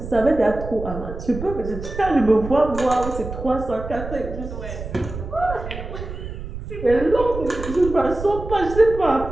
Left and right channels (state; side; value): noise; right; rumble, 9 dB below the sound